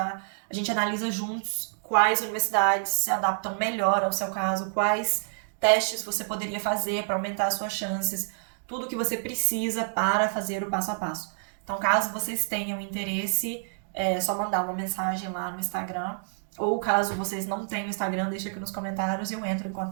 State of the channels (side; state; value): left; silent; digital silence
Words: A gente analisa juntos quais universidades se adaptam melhor ao seu caso, quais testes você poderia fazer para aumentar as suas chances, tudo que você precisa para fazer o passo a passo. Então, caso vocês tenham interesse, é só mandar uma mensagem lá no Instagram. Ou caso vocês não tenham Instagram, deixa aqui nos comentários e eu entro em